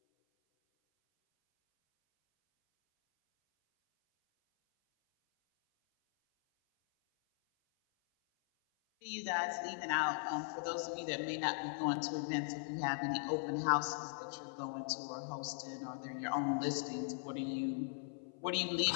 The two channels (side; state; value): right; silent; 52 dB below the other